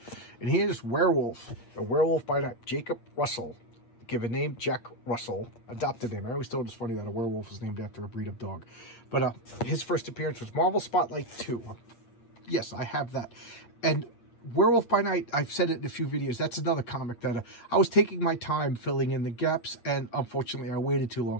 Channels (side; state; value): right; late; 8.6 ms